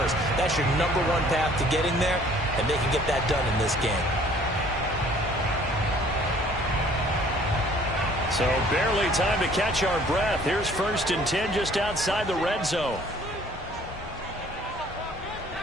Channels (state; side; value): normal; both; correlation 0.56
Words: That's your number one path to getting there, and they can get that done in this game. So barely time to catch our breath. Here's 1st and 10 just outside the red zone.